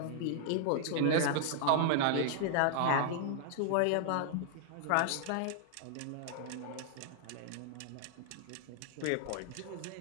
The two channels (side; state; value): both; different; correlation 0.00